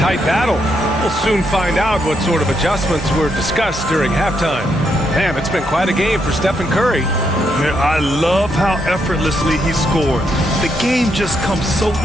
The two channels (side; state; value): both; normal; correlation 0.78